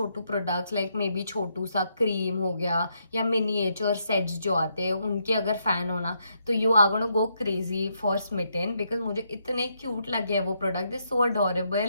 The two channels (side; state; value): both; inverted; correlation -0.77